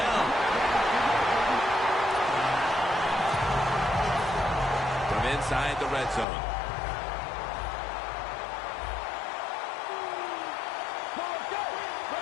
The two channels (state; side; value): drops out; right; at 6.2 s